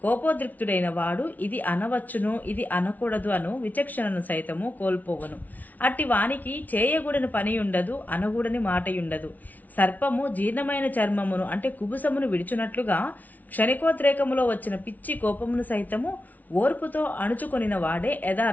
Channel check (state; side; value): late; right; 0.077 ms